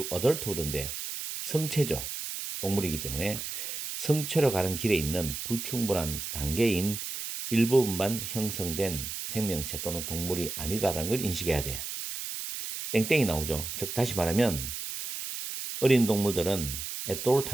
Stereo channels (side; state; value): right; noise; hiss, 6 dB below the sound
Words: adulthood인데 성체죠. 동물이기 때문에 성체로 가는 길에 있는 불충분한 단계인 일부분만 형성된 생명체 또는 동물이 아니다라는 걸 인식해야 돼요. 땡땡이 나오죠. 즉 다시 말하면 어린 동물들은 at all